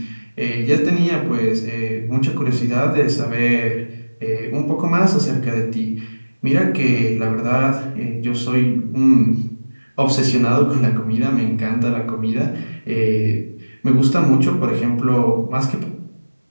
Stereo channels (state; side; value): inverted; both; correlation -1.00